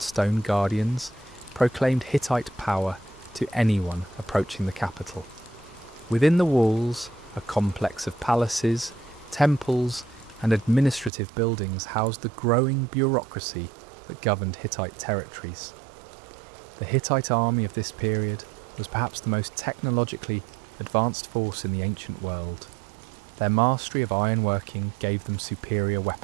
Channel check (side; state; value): left; drops out; at 11.1 s